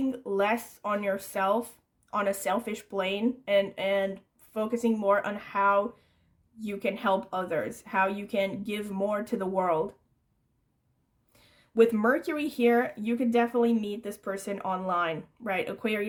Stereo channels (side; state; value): both; identical; correlation 1.00